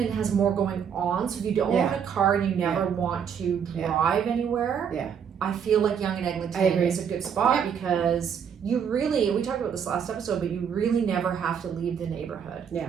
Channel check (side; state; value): left; quieter; 7.6 dB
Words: has more going on, so if you don't own a car and you never want to drive anywhere, I feel like Yonge and Eglington is a good spot because you really, we talked about this last episode, but you really never have to leave the neighborhood. Yeah,